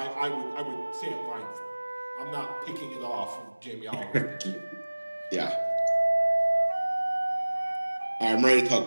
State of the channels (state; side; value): inverted; both; correlation -1.00